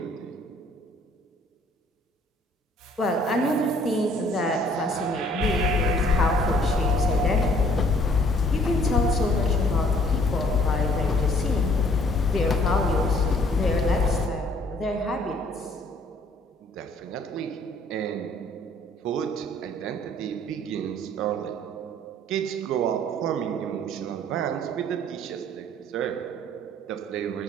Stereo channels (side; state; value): both; normal; correlation 0.59